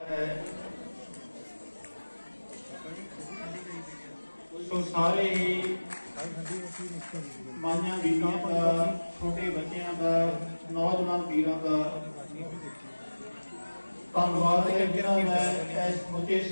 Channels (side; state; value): both; inverted; correlation -1.00